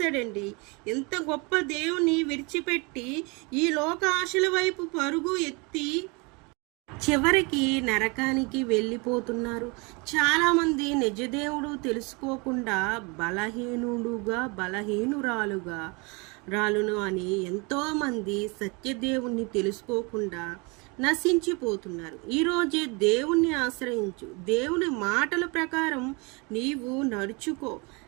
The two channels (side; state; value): left; quieter; 29.3 dB